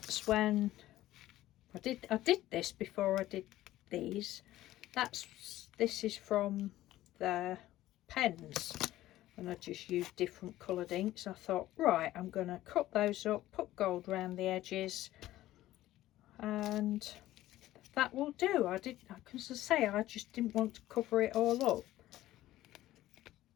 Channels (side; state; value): right; quieter; 15.0 dB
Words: when I did this before I did these. This is from the pens, and I just used different coloured inks. I thought, right, I'm going to cut those up, put gold around the edges, and that will do. Because I say, I just didn't want to cover it all up.